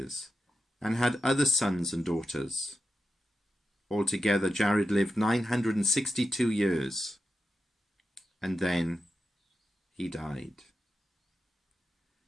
and had other sons and daughters. Altogether, Jared lived 962 years, and then he died.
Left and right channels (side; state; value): both; normal; correlation 0.91